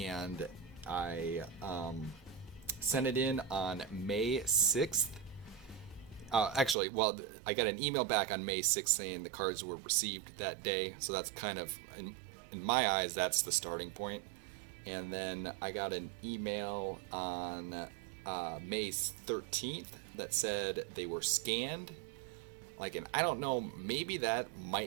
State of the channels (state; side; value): drops out; left; at 6.8 s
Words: I sent it in on May 6th. Actually, well, I got an email back on May 6th saying the cards were received that day, so that's kind of, in my eyes, that's the starting point. And then I got an email on May 13th that said they were scanned. And I don't know, maybe that